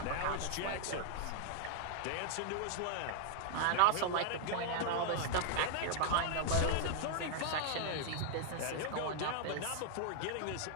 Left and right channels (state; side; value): different; both; correlation 0.00